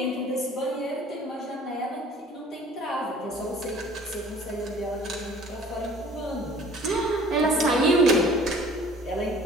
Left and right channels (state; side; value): normal; both; correlation 0.50